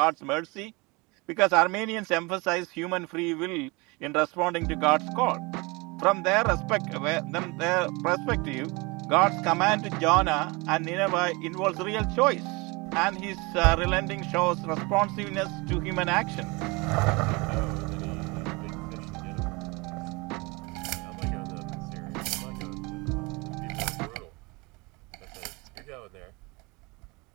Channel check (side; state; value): left; quieter; 26.3 dB